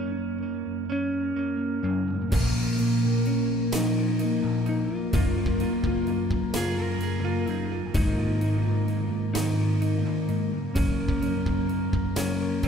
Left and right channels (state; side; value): normal; both; correlation 0.65